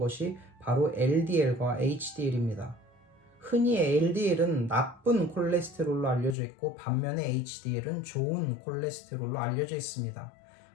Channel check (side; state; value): right; drops out; at 6.4 s